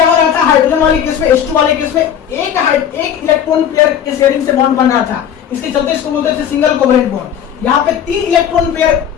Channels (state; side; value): quieter; right; 9.1 dB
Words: हो रहा था? हाइड्रोजन वाले केस में, H2 वाले केस में एक इलेक्ट्रॉन पेयर के शेयरिंग से बॉन्ड बन रहा था, इसके चलते इसको बोलते थे सिंगल कोवलेंट बॉन्ड। यहाँ पे 3 इलेक्ट्रॉन पेयर